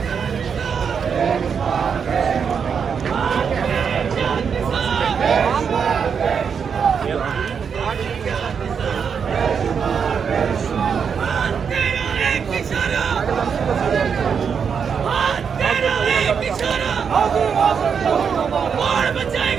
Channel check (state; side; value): quieter; left; 6.6 dB